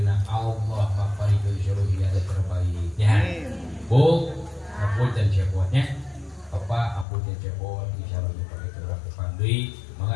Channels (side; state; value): right; drops out; at 7.1 s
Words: Allah maparikeun seluruh hidayah terbaiknya. Bu, apunten cepotnya. Papa apunten cepot insyaallah dipakai urang kupang deui.